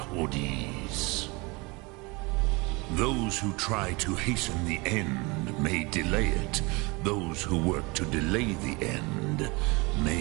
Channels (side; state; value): left; quieter; 26.5 dB